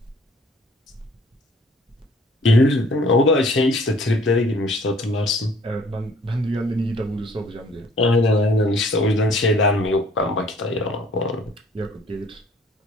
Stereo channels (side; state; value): both; normal; correlation 0.56